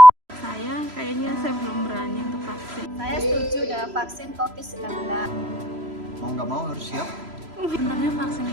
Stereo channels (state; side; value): late; left; 3.0 ms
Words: Saya belum berani untuk vaksin. Saya setuju dengan vaksin COVID-19. Mau nggak mau harus siap. Sebenarnya vaksin